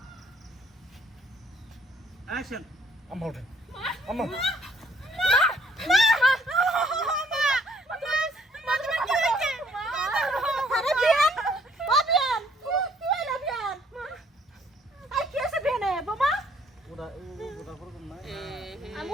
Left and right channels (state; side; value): normal; both; correlation 0.62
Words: অ্যাকশন আম্মা ওঠেন আম্মা